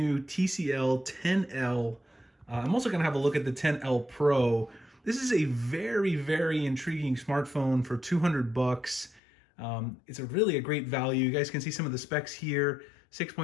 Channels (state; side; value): drops out; right; at 9.2 s